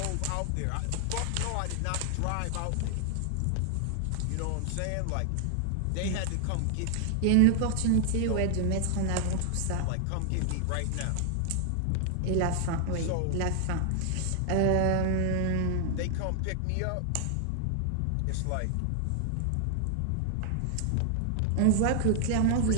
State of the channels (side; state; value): both; different; correlation 0.00